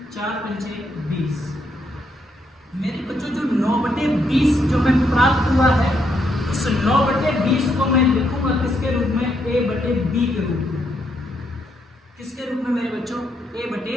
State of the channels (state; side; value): normal; both; correlation 0.77